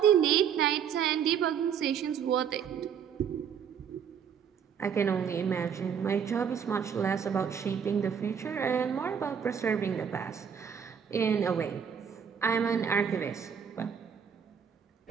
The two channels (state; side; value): quieter; left; 7.7 dB